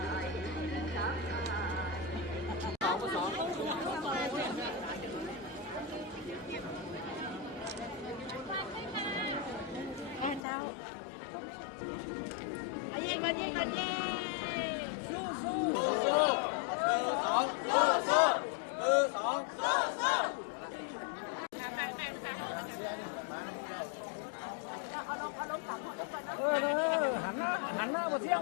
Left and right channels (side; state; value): right; drops out; at 10.4 s